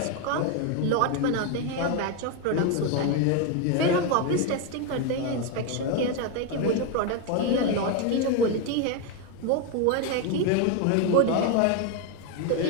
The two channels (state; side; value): different; both; correlation 0.02